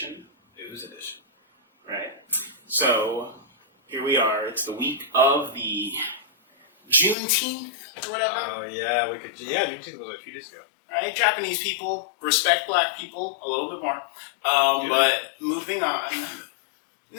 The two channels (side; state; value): right; drops out; at 7.2 s